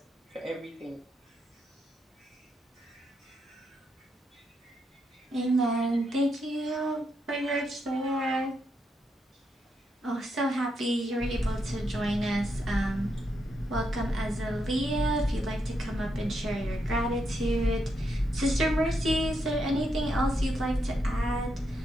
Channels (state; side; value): normal; both; correlation 0.81